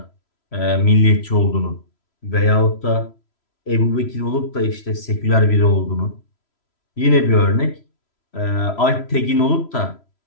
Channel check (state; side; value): late; right; 3.0 ms